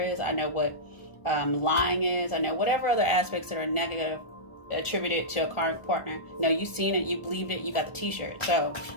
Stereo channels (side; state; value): right; late; 1.4 ms